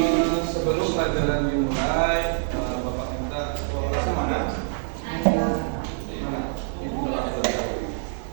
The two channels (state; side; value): silent; left; digital silence